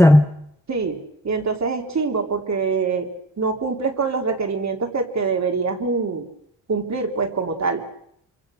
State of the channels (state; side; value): normal; both; correlation 0.34